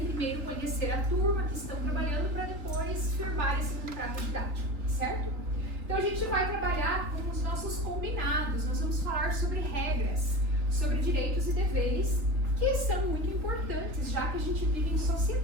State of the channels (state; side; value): late; left; 3.3 ms